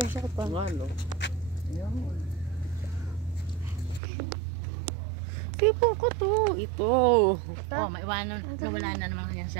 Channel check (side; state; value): left; drops out; at 4.0 s